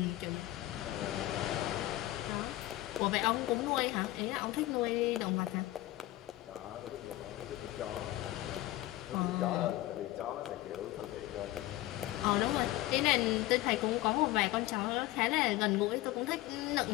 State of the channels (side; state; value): right; quieter; 16.7 dB